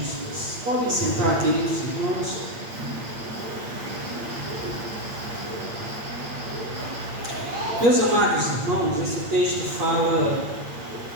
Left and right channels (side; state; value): left; late; 8.7 ms